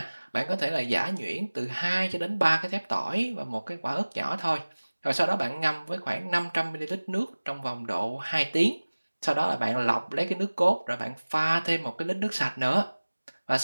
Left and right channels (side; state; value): both; inverted; correlation -1.00